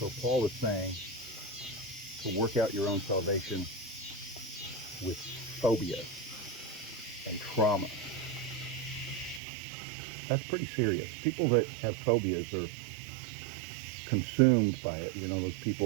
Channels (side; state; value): left; drops out; at 9.4 s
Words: Paul is saying to work out your own salvation with phobia and trauma. That's pretty serious. People that have phobias are consumed by it. You know, those